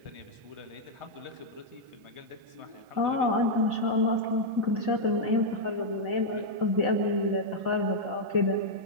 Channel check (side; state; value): left; late; 1.4 ms